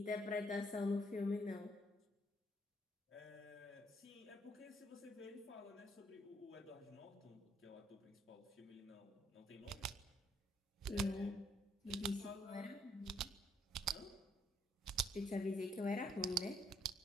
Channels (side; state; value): both; normal; correlation 0.69